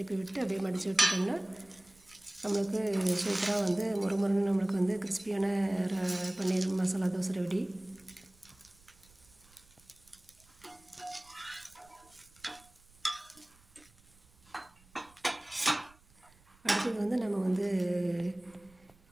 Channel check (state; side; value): noise; right; rumble, 28 dB below the sound